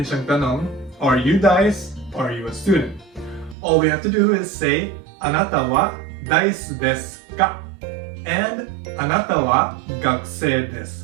siyang tanong, are you Dice? Are you a student? All we have to do is say, anata wa Dice desu ka? And anata wa gakusei desu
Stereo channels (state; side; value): drops out; left; at 3.6 s